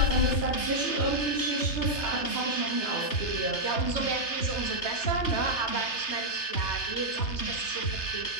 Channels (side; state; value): right; late; 3.3 ms